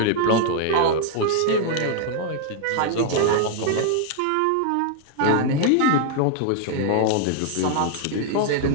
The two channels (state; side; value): different; both; correlation 0.00